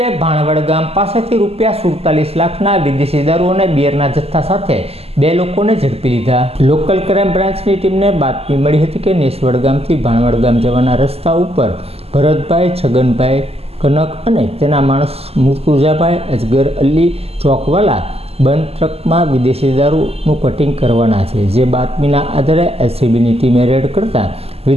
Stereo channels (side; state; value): left; late; 0.29 ms